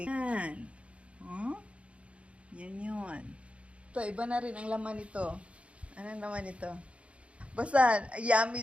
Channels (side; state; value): left; late; 0.061 ms